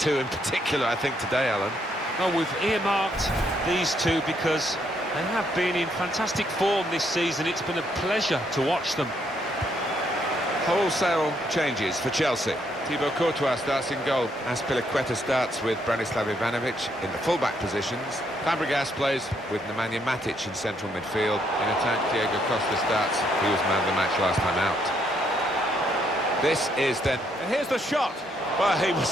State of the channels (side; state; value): both; normal; correlation 0.73